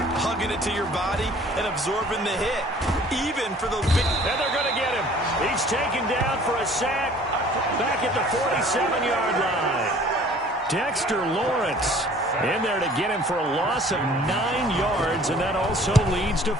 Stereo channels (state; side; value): normal; both; correlation 0.52